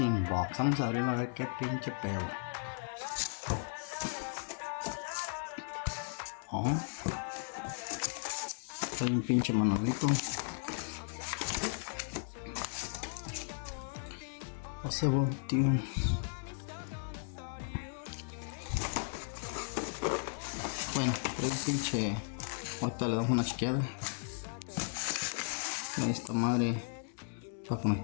inbox. Vamos a abrirlo a ver qué pinche pedo. Oh, hay un pinche manualito. Hace tío. Bueno, es un pinche. Ahorita le damos una chequeada. Esta madre para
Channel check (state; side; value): silent; right; digital silence